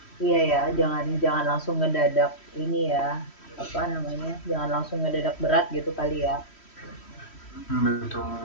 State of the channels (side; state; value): right; late; 3.1 ms